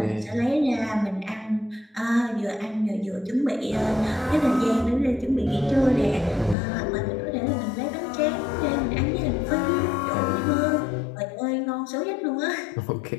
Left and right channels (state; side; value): drops out; right; at 6.6 s